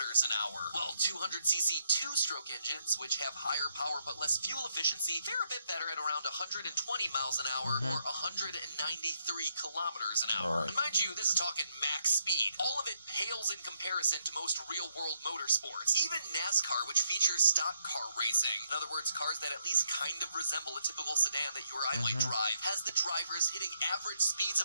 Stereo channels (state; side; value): inverted; both; correlation -0.75